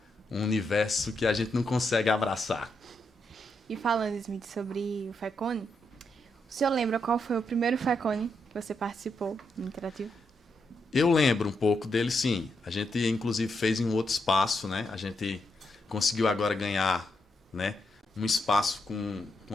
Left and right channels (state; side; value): normal; both; correlation 0.81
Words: um universo que a gente não consegue abraçar. E falando, Smith, sobre o FECONE, O senhor lembra qual foi o primeiro FECONE que você participou no Interativo? Eu lembro um pouco dele, sim. A gente, inclusive, fez em um outro espaço, né? A gente conseguiu agora ganhar, né, um espaço com